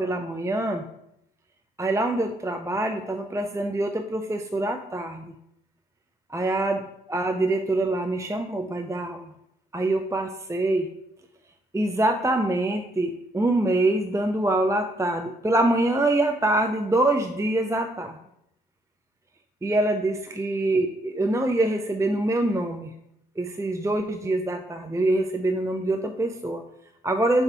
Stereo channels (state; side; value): normal; both; correlation 0.74